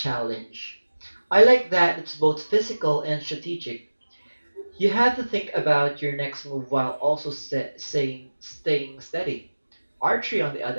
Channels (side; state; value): both; inverted; correlation -1.00